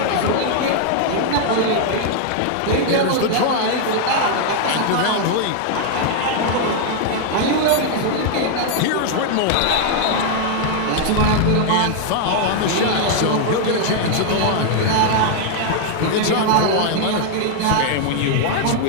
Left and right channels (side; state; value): both; different; correlation 0.00